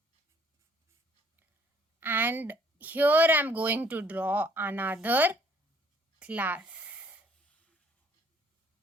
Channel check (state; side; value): normal; both; correlation 0.60